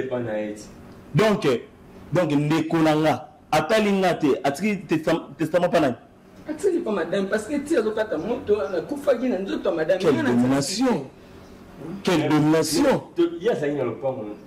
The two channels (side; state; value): both; identical; correlation 1.00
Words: pana eti donc ndekonanga atalinga te atikali testament pana atili pas madame parce que tu as okata moto na kufaki na nzoto madame quelle domination il y a ça dans